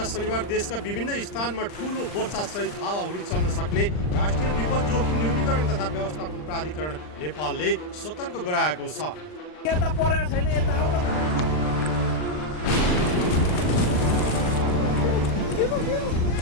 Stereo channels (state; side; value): late; right; 39 ms